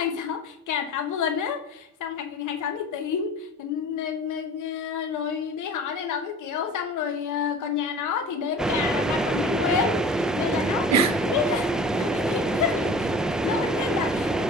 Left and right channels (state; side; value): normal; both; correlation 0.39